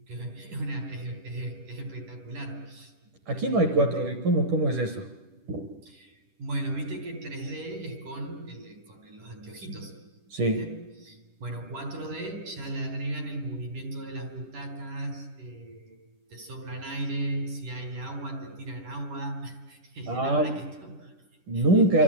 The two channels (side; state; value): left; late; 10 ms